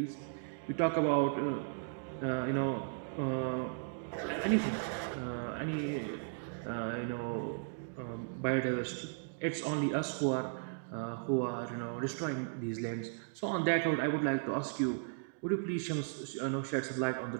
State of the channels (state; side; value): silent; left; digital silence